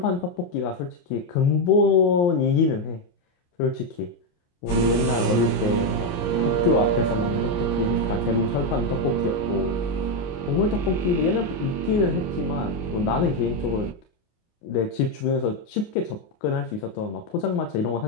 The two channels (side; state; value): right; late; 28 ms